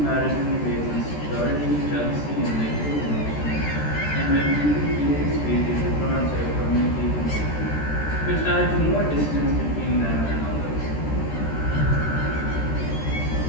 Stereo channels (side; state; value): right; late; 13 ms